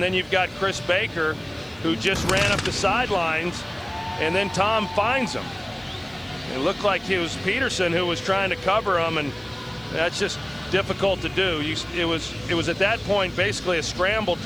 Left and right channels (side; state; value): right; noise; hiss, 29 dB below the sound